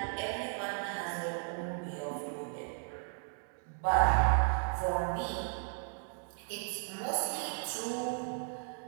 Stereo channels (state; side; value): silent; left; 54 dB below the other